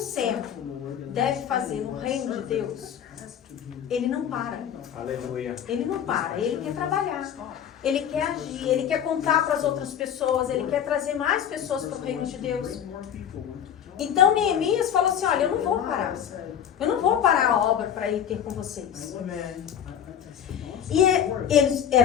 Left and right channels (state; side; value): quieter; right; 9.2 dB